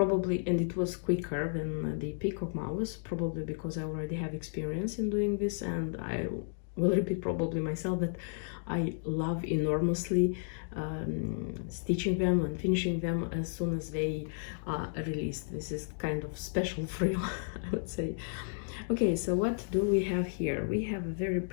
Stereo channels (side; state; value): right; silent; digital silence